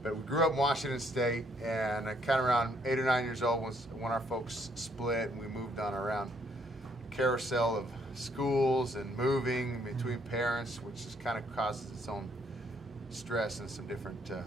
but we grew up in Washington State, and kind of around 8 or 9 years old was when our folks split, and we moved on around carousel of schools and moving between parents, which just kind of causes its own stress and some different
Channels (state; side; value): normal; both; correlation 0.68